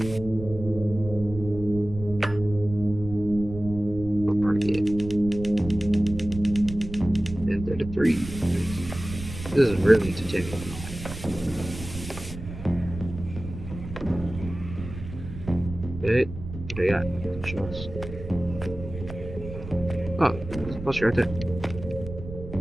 What part of it? 10:33. This is really entertaining. Okay, what do I got? Shots. Oh, there's a poster right there.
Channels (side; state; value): right; noise; rumble, 11 dB below the sound